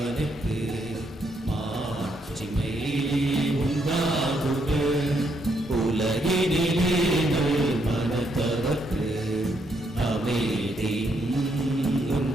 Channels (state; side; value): normal; both; correlation 0.75